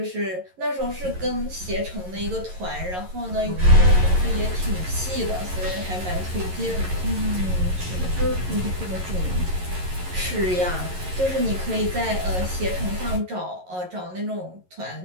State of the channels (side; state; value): left; late; 11 ms